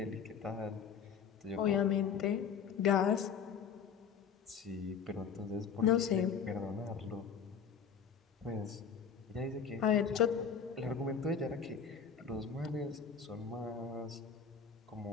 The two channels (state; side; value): quieter; right; 6.8 dB